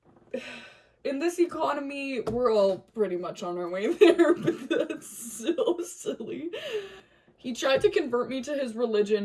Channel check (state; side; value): identical; both; correlation 1.00